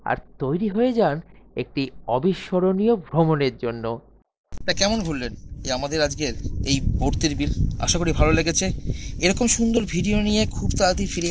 আর তৈরি হয়ে যান একটি অবিস্মরণীয় ভ্রমণের জন্য। তা কেমন ঘুরলেন আমাদের আজকের এই ভর্তির বিল? আশা করি ভালো লেগেছে। এরকম সুন্দর ভিডিও নিয়ে খুব তাড়াতাড়ি ফিরে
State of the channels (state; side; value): identical; both; correlation 1.00